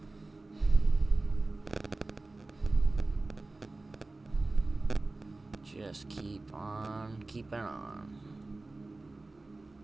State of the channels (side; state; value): left; quieter; 3.2 dB